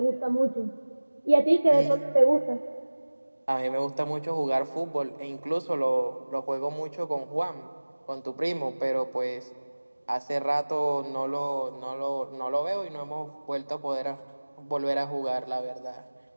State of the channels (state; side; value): inverted; both; correlation -1.00